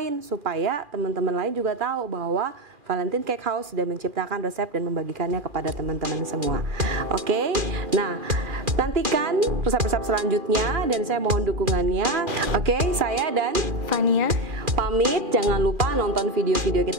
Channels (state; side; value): late; left; 2.4 ms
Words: supaya teman-teman lain juga tahu bahwa Valentine Cake House sudah menciptakan resep dan membagikannya kepada teman-teman semua. Oke, nah nantikan resep-resep selanjutnya dan saya mohon dukungannya. Oke, saya dan Fania pamit. Jangan lupa nonton video-video